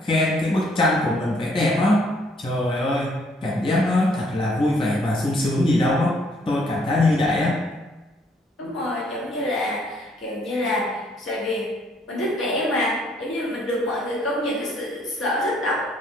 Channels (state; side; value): normal; both; correlation 0.66